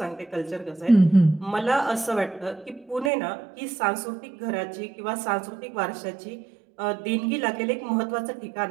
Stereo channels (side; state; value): left; drops out; at 3.1 s